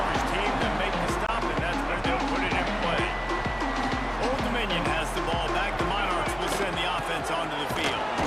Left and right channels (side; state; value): both; identical; correlation 1.00